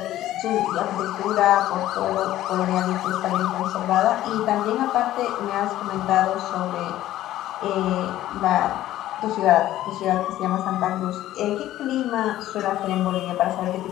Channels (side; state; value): right; quieter; 13.9 dB